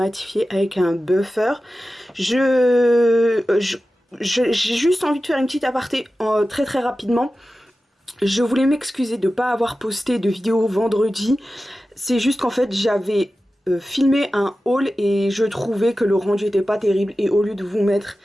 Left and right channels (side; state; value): both; normal; correlation 0.94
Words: avec un buffer. J'ai juste envie de faire une petite aparté très rapidement. Je voulais m'excuser de ne pas avoir posté de vidéo vendredi. C'est juste qu'en fait j'avais filmé un haul et je trouvais que le rendu était pas terrible. Et au lieu de vous mettre